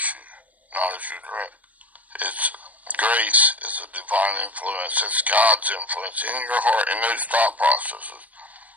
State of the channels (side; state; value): left; late; 0.071 ms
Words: you, not as you direct. It's grace is a divine influence. It's God's influence in your heart, in those thought processes.